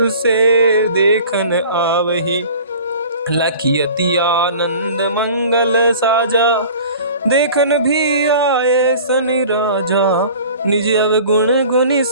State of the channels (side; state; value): both; inverted; correlation -0.44